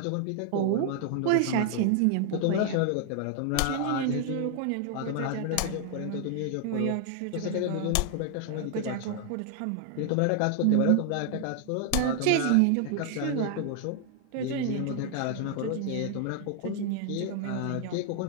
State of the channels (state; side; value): different; both; correlation 0.00